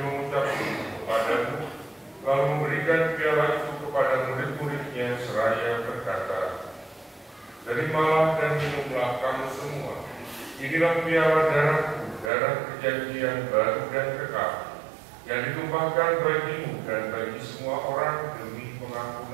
mengucap syukur kepadamu, lalu memberikan piala itu kepada murid-muridnya seraya berkata, Terimalah dan minumlah kamu semua. Inilah piala darahku, darah perjanjian baru dan kekal, yang ditumpahkan bagimu dan bagi semua orang demi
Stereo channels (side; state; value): left; drops out; at 12.3 s